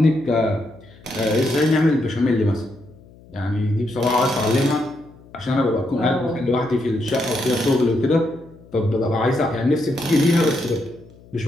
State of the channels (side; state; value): left; noise; hum, 24 dB below the sound